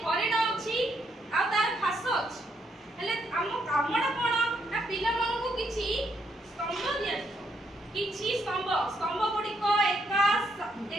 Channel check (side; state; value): both; normal; correlation 0.75